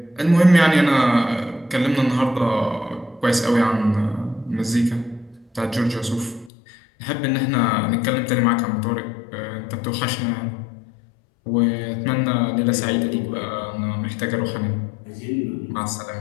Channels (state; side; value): drops out; right; at 6.5 s